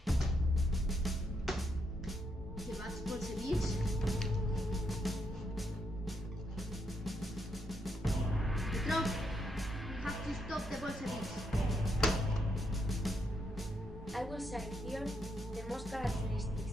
The bad Bolsheviks? Petrov, we have to stop the Bolsheviks. I will cite here the most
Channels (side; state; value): both; normal; correlation 0.79